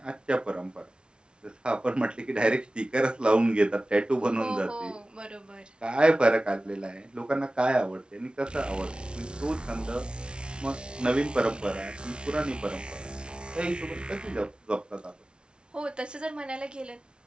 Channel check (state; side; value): late; left; 0.056 ms